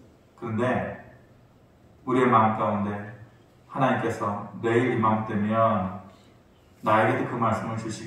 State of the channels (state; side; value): identical; both; correlation 1.00